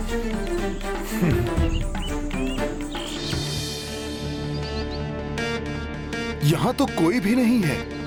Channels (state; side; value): identical; both; correlation 1.00